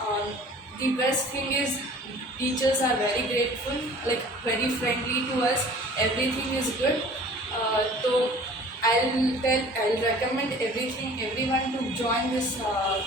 The best thing is teachers are very grateful, like very friendly to us. Everything is good. So I'll recommend everyone to join this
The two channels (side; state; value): both; normal; correlation 0.47